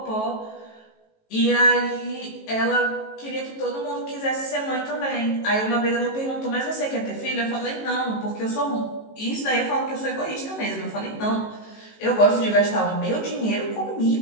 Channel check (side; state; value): right; late; 18 ms